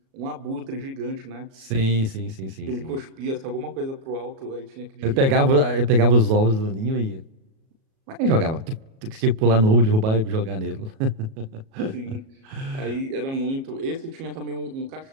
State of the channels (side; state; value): left; late; 37 ms